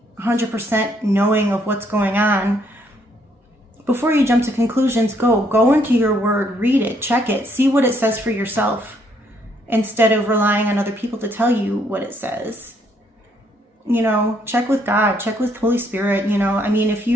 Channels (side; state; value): both; normal; correlation 0.69